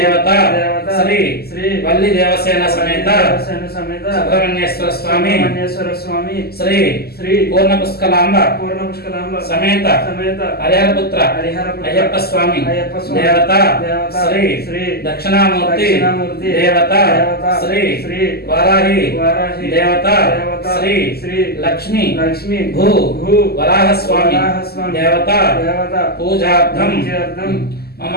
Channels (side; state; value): right; late; 0.46 ms